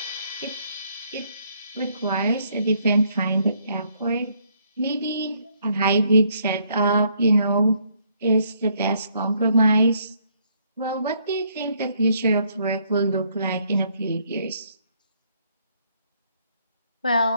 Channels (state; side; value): inverted; both; correlation -0.69